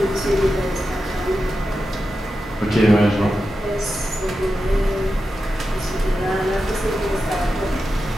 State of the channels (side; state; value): both; normal; correlation 0.90